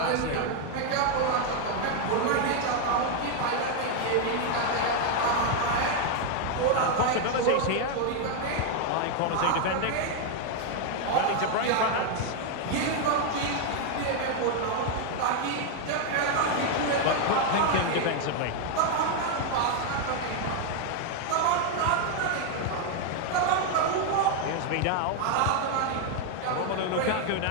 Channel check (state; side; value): different; both; correlation 0.01